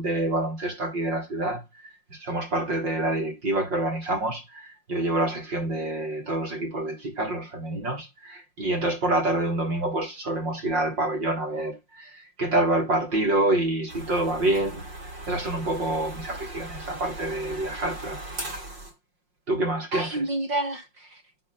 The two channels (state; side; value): late; left; 5.6 ms